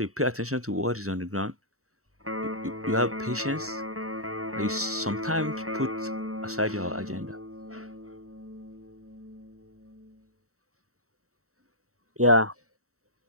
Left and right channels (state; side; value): late; left; 0.64 ms